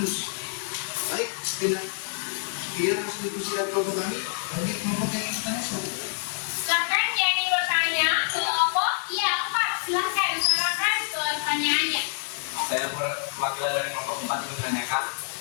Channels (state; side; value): silent; right; 60 dB below the other